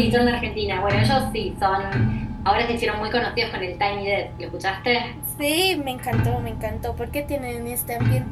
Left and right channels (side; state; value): both; identical; correlation 1.00